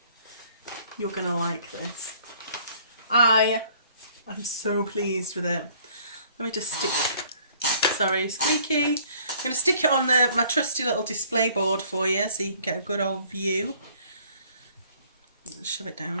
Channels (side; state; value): both; inverted; correlation -0.59